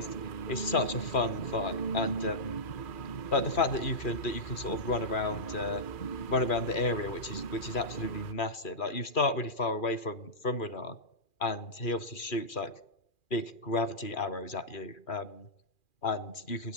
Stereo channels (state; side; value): late; right; 2.4 ms